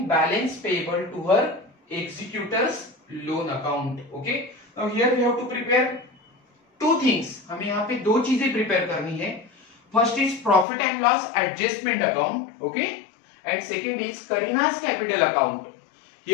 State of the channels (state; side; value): drops out; right; at 10.7 s